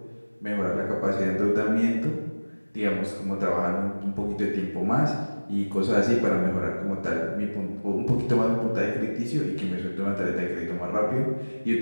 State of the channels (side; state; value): both; inverted; correlation -1.00